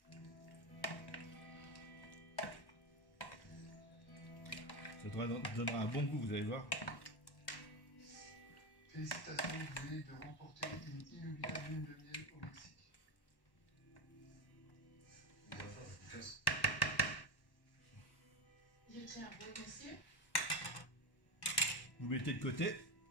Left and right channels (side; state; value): right; late; 1.1 ms